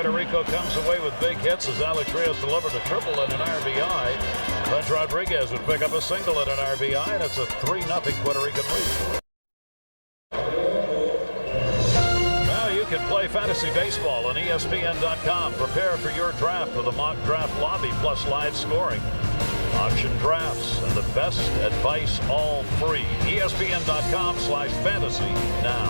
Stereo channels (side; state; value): both; inverted; correlation -1.00